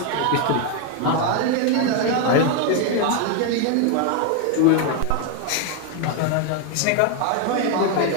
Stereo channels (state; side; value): different; both; correlation 0.01